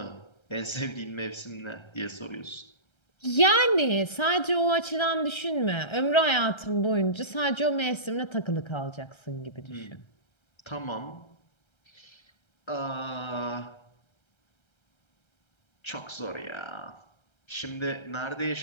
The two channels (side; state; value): right; late; 1.3 ms